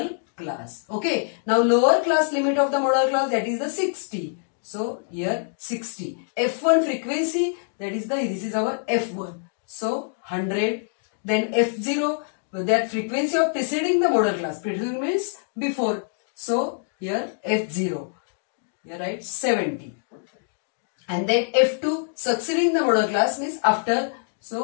class. Okay. Now lower class limit of the model class, that is the 60. So here 60. F1 frequency, this is our F1. So 100. Then F0, that frequency of preceding the model class. Preceding means before. So here F0. Here write 70. And then F2 succeeding the model class means after.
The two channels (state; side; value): silent; right; digital silence